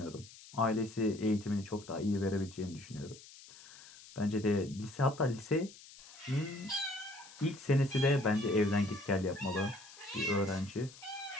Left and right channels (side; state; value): left; noise; hiss, 19 dB below the sound